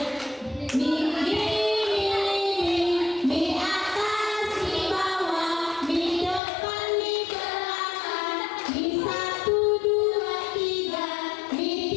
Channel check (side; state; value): right; drops out; at 6.4 s